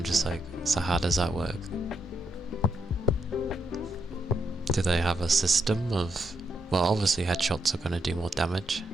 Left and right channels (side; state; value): both; normal; correlation 0.80